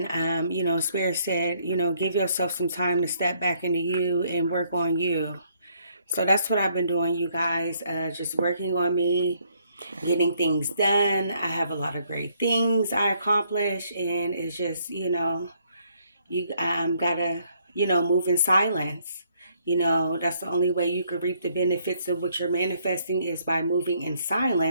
Spirit said, give yourself some time to step back into you and work on you. So that's what I've been doing, you guys, just working on me, getting things done. I have a lot of great things I accomplish, and it's just, you gotta, move in silence. That's the only way you could reap the benefits of what you're manifesting is by moving in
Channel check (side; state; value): both; inverted; correlation -0.69